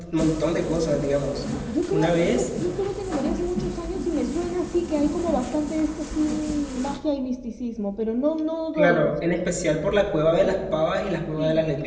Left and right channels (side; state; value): both; identical; correlation 1.00